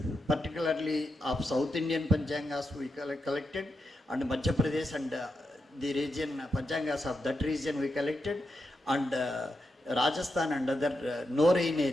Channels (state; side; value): normal; both; correlation 0.86